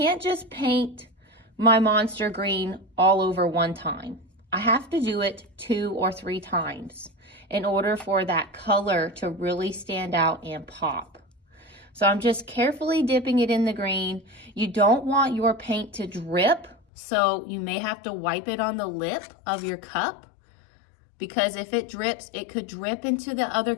just paint my monster green all over one time. I have to do it 2 or 3 times in order for that color to really stand out and pop. So I'm just carefully dipping it in the green. You don't want your paint to drip, so you may have to wipe it on the lip of your cup, because if it drips, it could drip into the other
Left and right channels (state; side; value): drops out; right; at 16.8 s